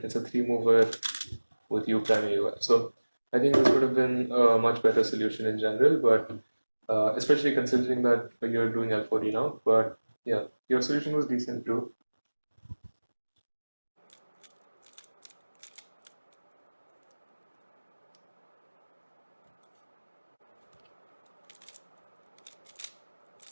it's a 3-mover with U prime AUF. So I think this would have been a much better solution in general, but especially considering that you're doing L4D now. But yeah, your solution was decent too.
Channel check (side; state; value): both; inverted; correlation -1.00